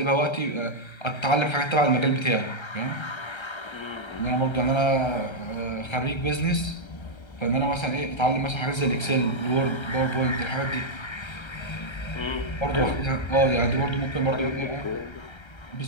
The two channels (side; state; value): right; late; 1.3 ms